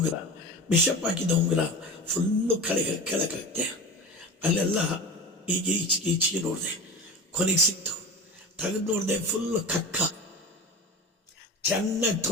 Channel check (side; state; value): both; normal; correlation 0.30